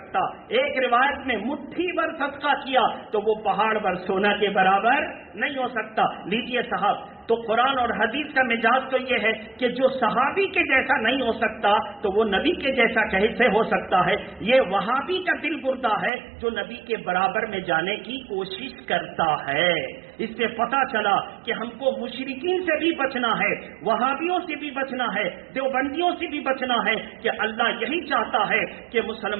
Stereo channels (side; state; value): left; drops out; at 16.1 s